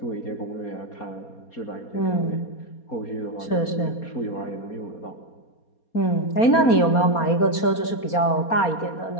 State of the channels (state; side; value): late; right; 4.3 ms